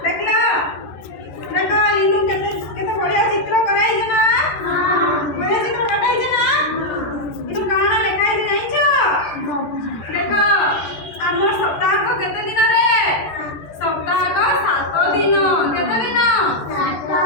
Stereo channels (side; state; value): right; late; 13 ms